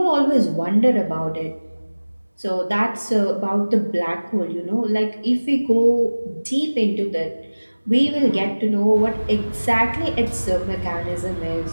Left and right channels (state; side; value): inverted; both; correlation -1.00